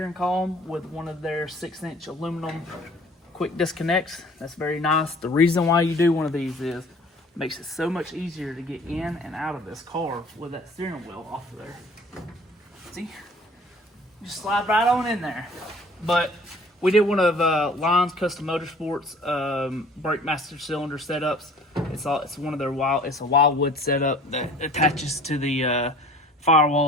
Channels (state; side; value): normal; both; correlation 0.50